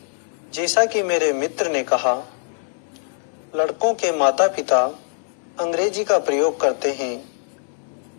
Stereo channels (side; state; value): right; silent; digital silence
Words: जैसा कि मेरे मित्र ने कहा, लड़कों के माता पिता अंग्रेजी का प्रयोग करते हैं